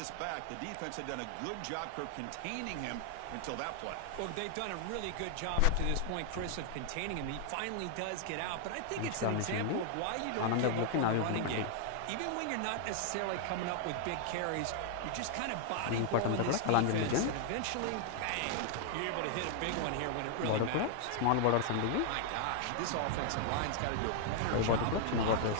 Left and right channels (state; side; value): different; both; correlation 0.00